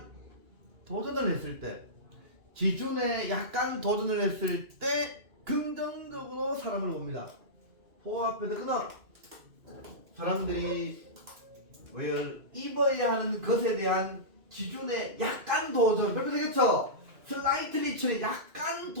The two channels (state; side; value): late; left; 2.5 ms